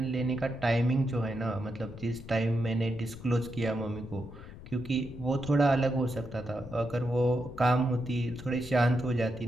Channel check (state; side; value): noise; left; rumble, 14 dB below the sound